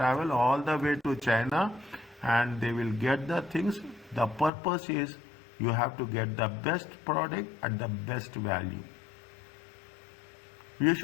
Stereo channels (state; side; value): drops out; right; at 4.5 s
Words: all the way to China and they will get the things. The purpose is you have to get the best product at the best value. You